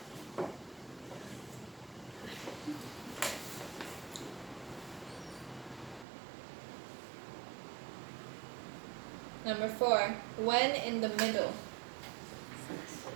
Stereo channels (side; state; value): left; drops out; at 6.1 s